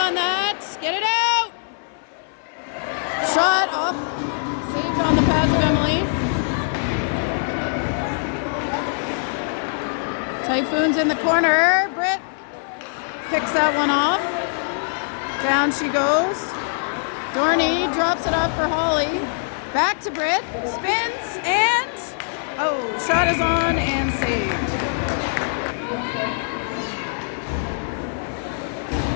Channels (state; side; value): silent; right; 64 dB below the other